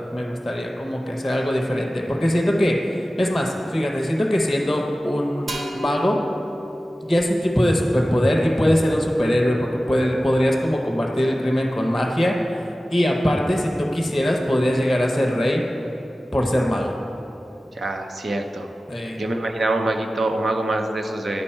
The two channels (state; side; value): normal; both; correlation 0.95